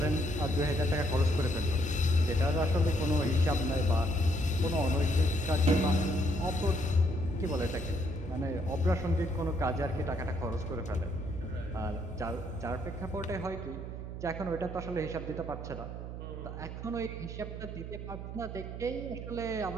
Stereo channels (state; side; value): noise; right; hum, 8 dB below the sound